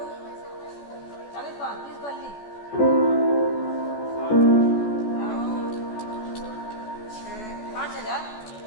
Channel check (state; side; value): late; right; 14 ms